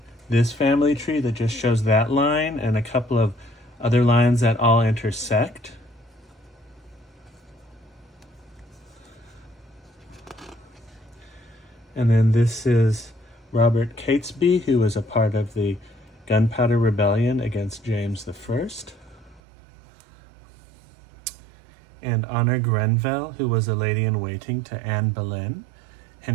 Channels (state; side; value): drops out; left; at 19.4 s